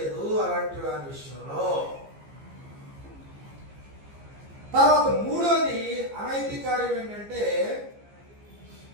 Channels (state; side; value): late; left; 15 ms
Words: అలాంటి వారి విషయంలో. తర్వాత 3వది అనైతిక కార్యం ఏంటంటే